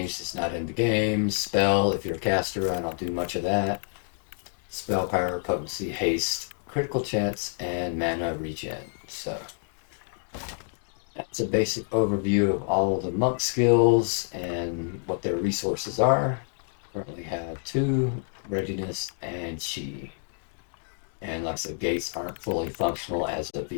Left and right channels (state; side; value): silent; right; 57 dB below the other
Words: is not in the game. Spell, if you're a caster, I don't do much of that. Spell power, potency, haste, critical chance, and mana regen. So, that's a basic overview of all of the monk skills and what their resources are. Currently have 2, readiness and chi. And like I said, gates aren't fully functional as of